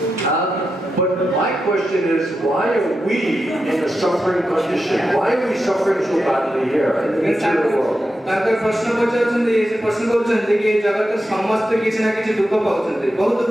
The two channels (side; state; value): both; normal; correlation 0.89